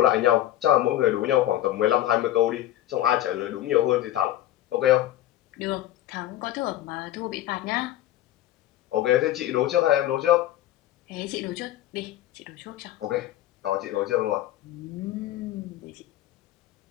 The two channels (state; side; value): quieter; right; 13.4 dB